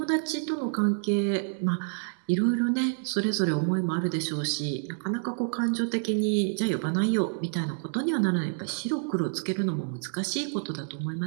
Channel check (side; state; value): left; silent; digital silence